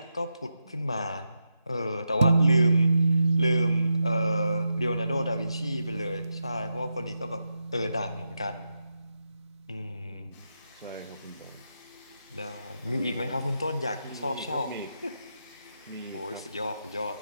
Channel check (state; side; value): inverted; both; correlation -0.86